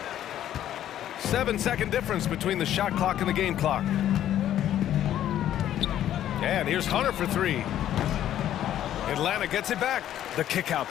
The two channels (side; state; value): right; quieter; 11.6 dB